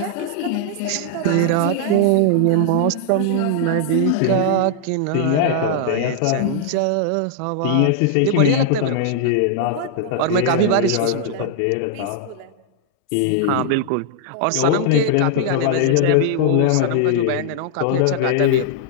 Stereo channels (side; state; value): both; different; correlation -0.01